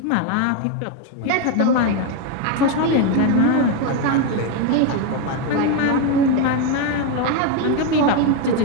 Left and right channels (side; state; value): both; different; correlation 0.02